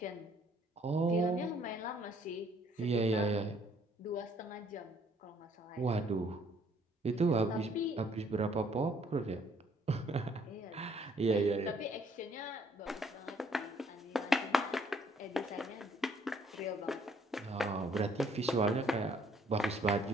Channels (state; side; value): normal; both; correlation 0.64